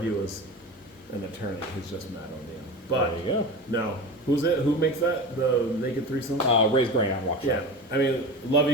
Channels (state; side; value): normal; both; correlation 0.29